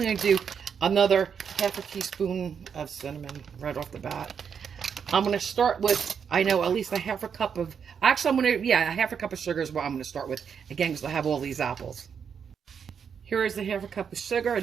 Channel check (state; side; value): quieter; left; 7.1 dB